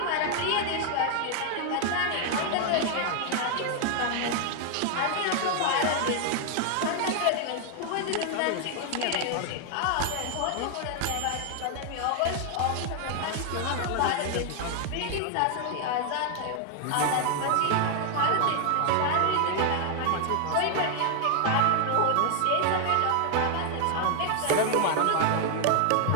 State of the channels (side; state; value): both; different; correlation 0.00